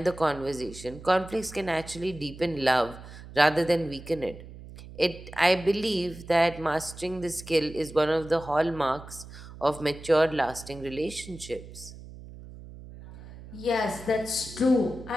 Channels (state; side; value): noise; right; hum, 16 dB below the sound